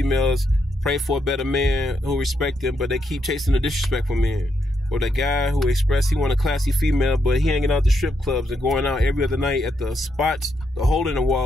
pray for a better man who respect them, but they keep chasing the disrespectful men. Or the guy who expressed he want a classy female, but he hanging out the strip clubs and going out every other night at the spots, the hole in the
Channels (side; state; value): both; normal; correlation 0.79